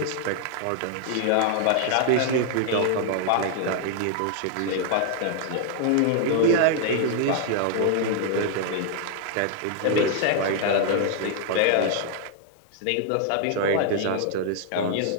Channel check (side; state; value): both; different; correlation 0.00